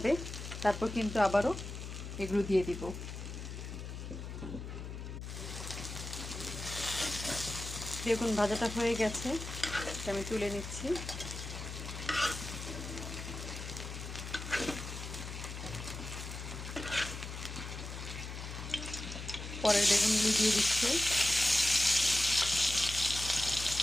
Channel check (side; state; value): left; noise; hum, 8 dB below the sound